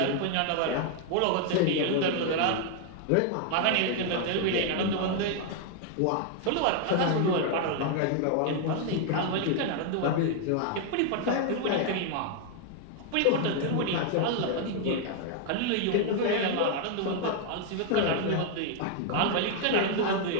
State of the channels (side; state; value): both; different; correlation 0.00